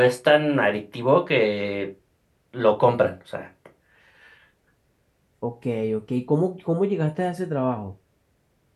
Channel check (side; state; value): both; identical; correlation 1.00